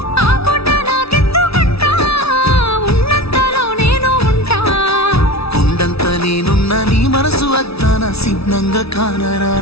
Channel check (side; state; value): right; late; 0.77 ms